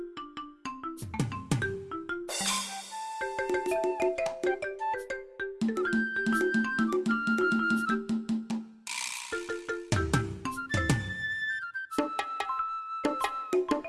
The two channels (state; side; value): identical; both; correlation 1.00